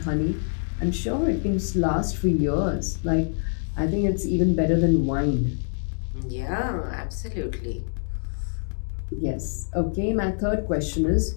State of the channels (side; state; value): right; silent; digital silence